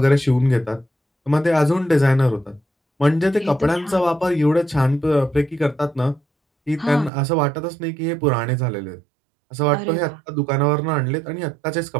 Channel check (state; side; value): drops out; left; at 7.1 s